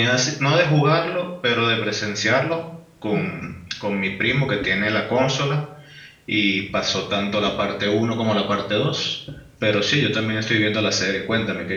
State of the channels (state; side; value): identical; both; correlation 1.00